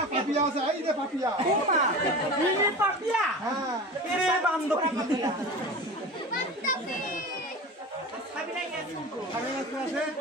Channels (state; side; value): normal; both; correlation 0.32